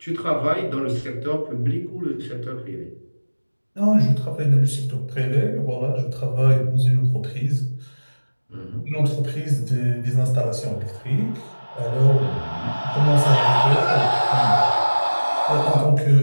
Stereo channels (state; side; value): inverted; both; correlation -1.00